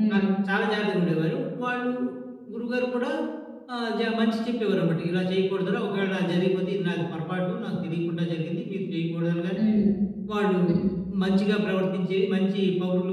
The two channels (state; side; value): identical; both; correlation 1.00